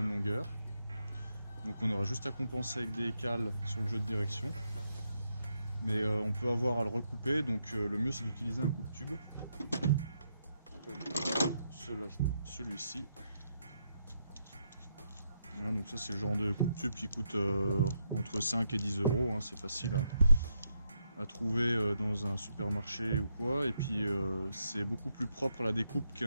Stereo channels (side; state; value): both; inverted; correlation -0.80